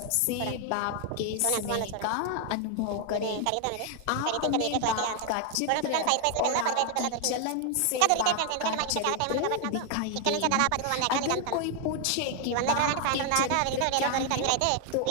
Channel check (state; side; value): different; both; correlation 0.00